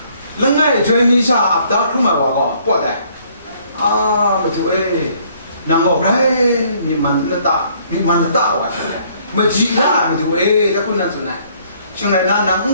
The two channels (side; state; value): both; inverted; correlation -0.63